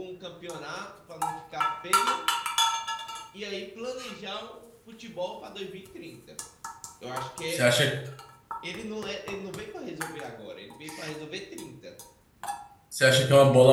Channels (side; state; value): both; identical; correlation 1.00